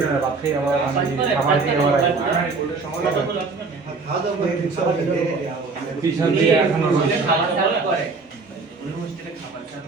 হয়ে বাদ খেয়ে আবার আমি খাবার দিয়ে আবার খাওয়া দাওয়া করে দিতে হবে পিছন দিয়ে এখনো রয়েছে খাবার সার্ভ করে উনি হোস্টেলে খাবার সার্ভ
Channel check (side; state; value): left; quieter; 4.2 dB